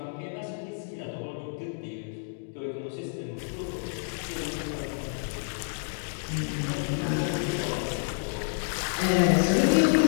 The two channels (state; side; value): silent; right; digital silence